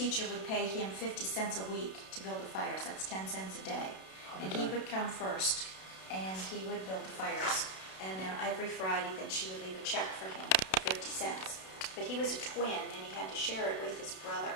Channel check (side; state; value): right; late; 32 ms